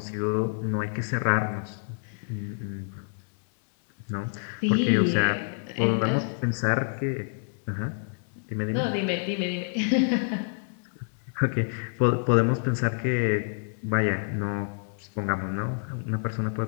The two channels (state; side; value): silent; right; digital silence